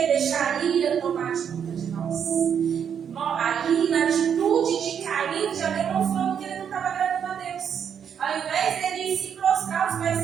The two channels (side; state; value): left; quieter; 8.0 dB